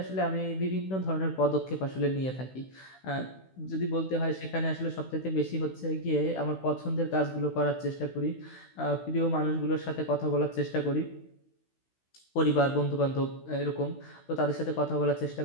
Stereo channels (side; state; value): right; late; 16 ms